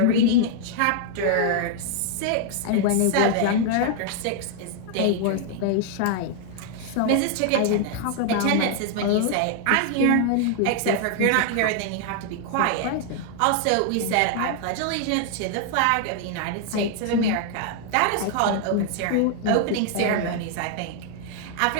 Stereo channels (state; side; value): different; both; correlation 0.00